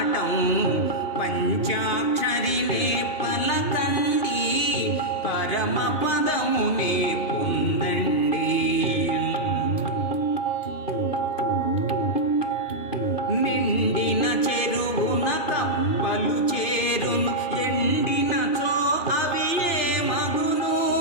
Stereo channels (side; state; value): right; late; 2.5 ms